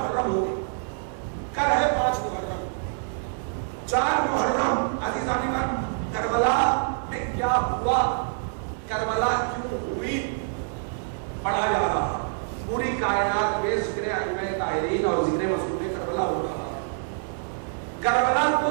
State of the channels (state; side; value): silent; left; 55 dB below the other